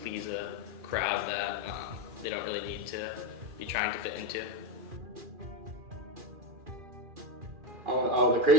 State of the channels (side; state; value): left; late; 2.4 ms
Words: a crowd that they don't really need to be trying to fit into. The